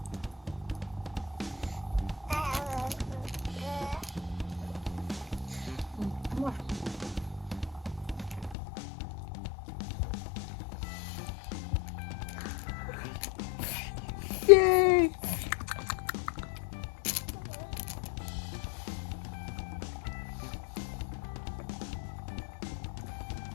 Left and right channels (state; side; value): drops out; right; at 8.6 s